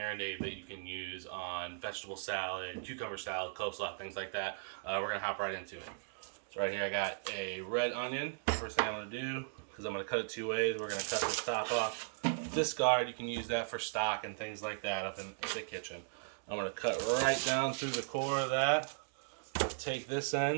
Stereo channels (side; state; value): left; silent; digital silence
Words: that you can use on vegetable salad, cucumber salad, coleslaw, things like that. We're going to hop right into it. So right here I got a red onion. First thing I'm going to do, because I'm going to cut it two ways, we're going to cut the top off. Discard, you can use that for stock and things like that up in the kitchen. I'm going to cut right down through the core of that. Take this